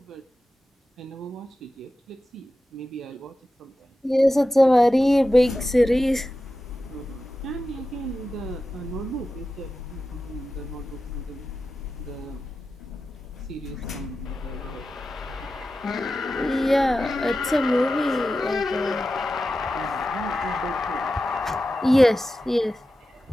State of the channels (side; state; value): both; normal; correlation 0.93